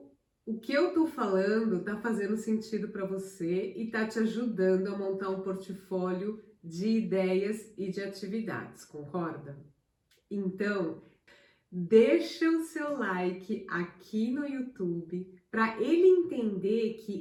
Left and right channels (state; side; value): identical; both; correlation 1.00